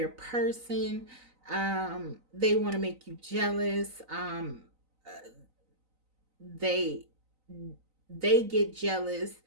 person. They want to make you jealous. They get jealous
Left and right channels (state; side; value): late; left; 3.9 ms